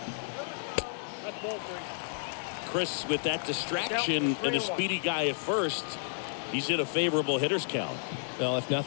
That's ball three. Chris, with that distraction and a speedy guy at first, he's in a favorable hitter's count. Well, if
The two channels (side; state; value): right; silent; digital silence